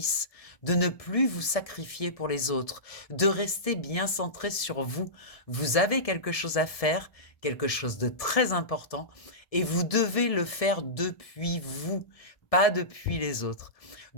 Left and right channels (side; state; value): right; late; 1.7 ms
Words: de ne plus vous sacrifier pour les autres, de rester bien centré sur vous. Vous avez quelque chose à faire, quelque chose de très important, et vous devez le faire depuis vous, pas depuis les autres,